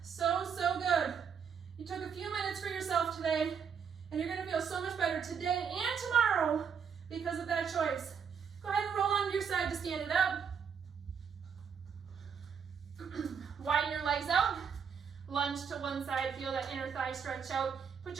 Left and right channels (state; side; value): quieter; left; 6.8 dB